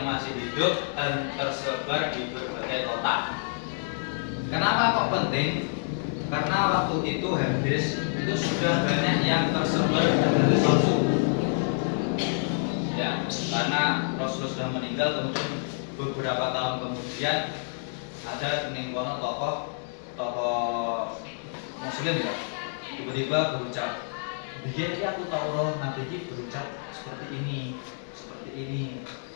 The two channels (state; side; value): silent; right; 59 dB below the other